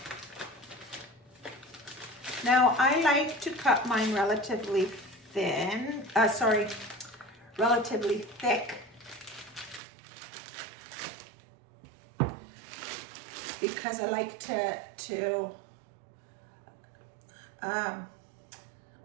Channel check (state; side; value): drops out; left; at 9.8 s